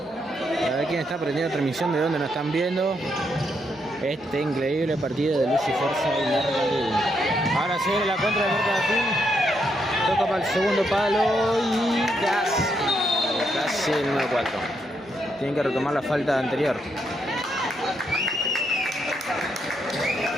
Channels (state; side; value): normal; both; correlation 0.78